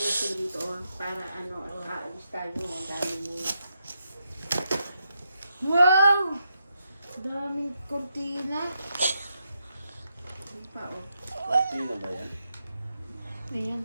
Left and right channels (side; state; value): both; inverted; correlation -0.83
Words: dito para aalis tayo ng dami mo. Wow! Daming kortina. Ano pa, oh. Sino ba yan? Ayan.